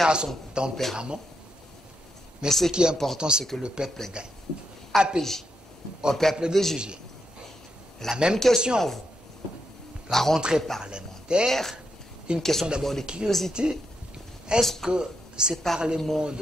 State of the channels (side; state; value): both; normal; correlation 0.82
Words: a son tempérament. Mais ce qui est important, c'est que le peuple gagne. APJ, au peuple de juger. La même question à vous. La rentrée parlementaire, une question d'abord de curiosité. Est-ce que ces parlements